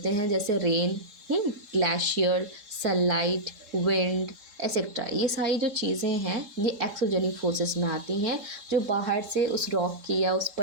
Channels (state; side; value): late; left; 3.7 ms